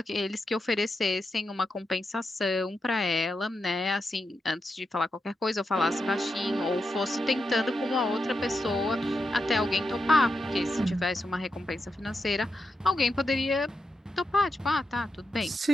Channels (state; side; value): normal; both; correlation 0.86